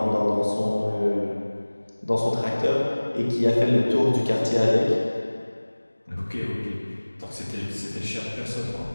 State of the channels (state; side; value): inverted; both; correlation -1.00